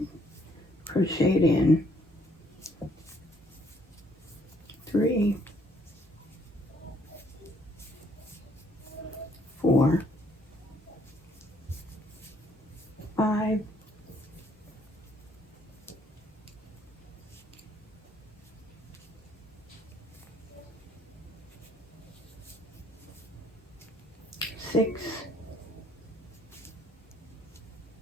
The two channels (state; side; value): normal; both; correlation 0.66